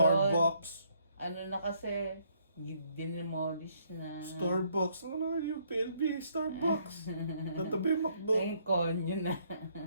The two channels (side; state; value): both; inverted; correlation -0.68